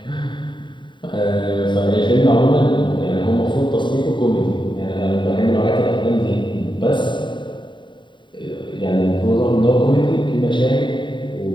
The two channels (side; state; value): right; late; 0.23 ms